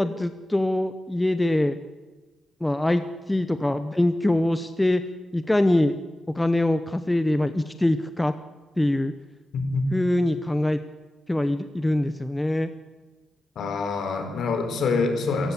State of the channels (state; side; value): normal; both; correlation 0.95